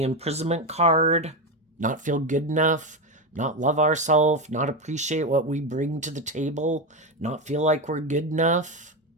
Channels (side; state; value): both; normal; correlation 0.13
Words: imprisonment card. Not feel good enough, not love ourselves, not appreciate what we bring to the table, not feel like we're good enough.